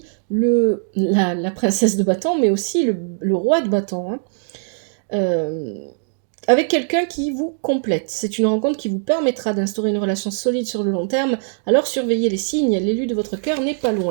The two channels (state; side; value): silent; left; 65 dB below the other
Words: la princesse de bâton, mais aussi le roi de bâton. Hein. Avec quelqu'un qui vous complète. C'est une rencontre qui vous permettra d'instaurer une relation solide sur le long terme. Alors surveillez les signes, l'élu de votre cœur n'est pas